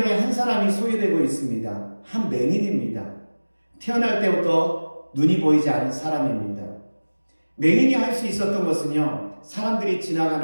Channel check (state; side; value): inverted; both; correlation -1.00